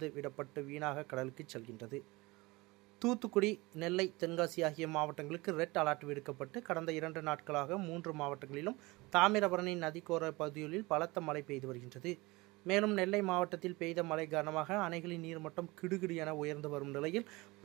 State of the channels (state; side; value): quieter; left; 22.9 dB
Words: விடப்பட்டு வீணாக கடலுக்கு செல்கின்றது. தூத்துக்குடி, நெல்லை, தென்காசி ஆகிய மாவட்டங்களுக்கு ரெட் அலர்ட் விடுக்கப்பட்டு கடந்த 2 நாட்களாக 3 மாவட்டங்களிலும் தாமிரபரணி நதிக்கோர பகுதிகளில் பலத்த மழை பெய்து வருகின்றது. மேலும் நெல்லை மாவட்டத்தில் பெய்த மழை காரணமாக அணைகளின் நீர்மட்டம் கிடுகிடு என உயர்ந்து வரும் நிலையில்